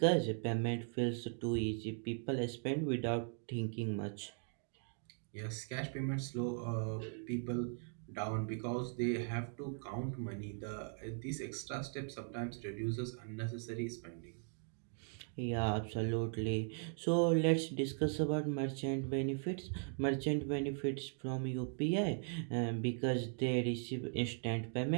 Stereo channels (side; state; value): left; silent; 52 dB below the other